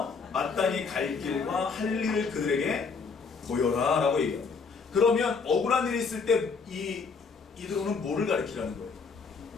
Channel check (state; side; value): quieter; right; 5.0 dB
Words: 마땅히 갈 길과 할 일을 그들에게 보여라 라고 얘기합니다. 그러면 억울한 일이 있을 때 이 이드로는 뭐를 가르치라는 거예요?